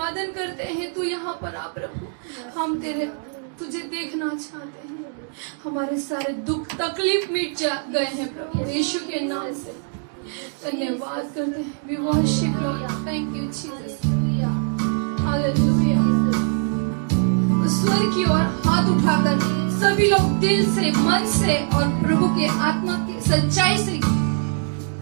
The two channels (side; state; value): left; silent; 58 dB below the other